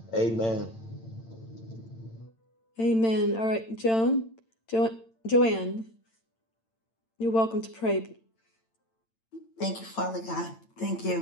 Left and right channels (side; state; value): right; late; 8.9 ms